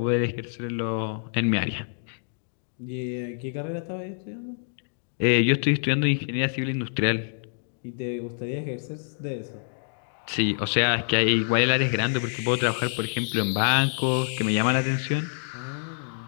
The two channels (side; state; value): right; silent; digital silence